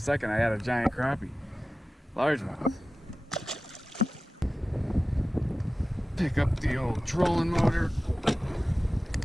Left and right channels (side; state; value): both; normal; correlation 0.95